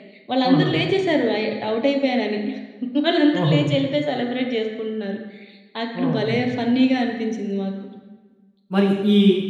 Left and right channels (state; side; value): identical; both; correlation 1.00